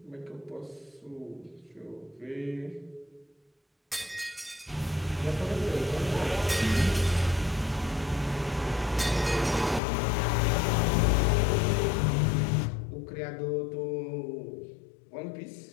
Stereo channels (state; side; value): drops out; right; at 9.8 s